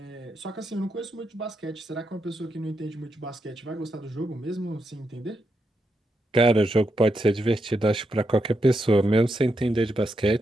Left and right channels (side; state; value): both; normal; correlation 0.83